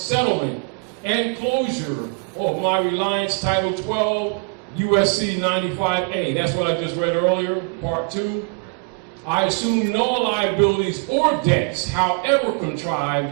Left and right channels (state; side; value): quieter; left; 36.8 dB